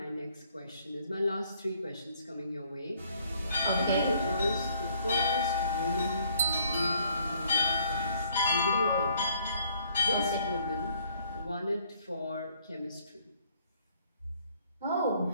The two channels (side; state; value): both; inverted; correlation -0.63